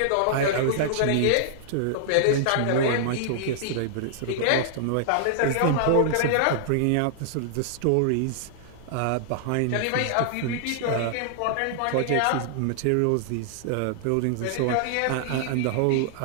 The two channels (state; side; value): different; both; correlation -0.01